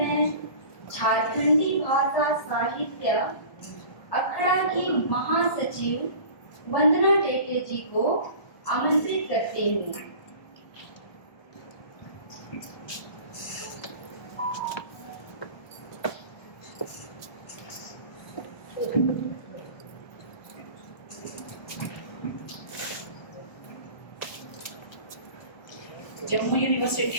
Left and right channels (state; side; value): late; right; 1.2 ms